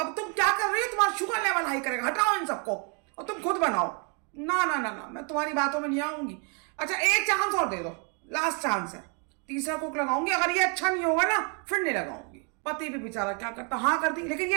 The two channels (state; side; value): quieter; left; 36.9 dB